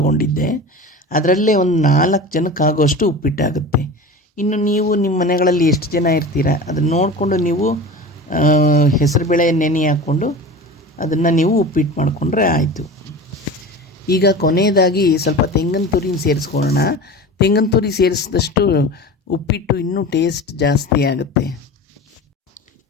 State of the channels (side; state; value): both; normal; correlation 0.33